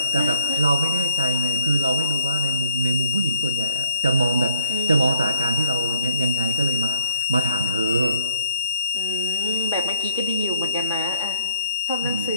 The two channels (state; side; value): inverted; both; correlation -0.66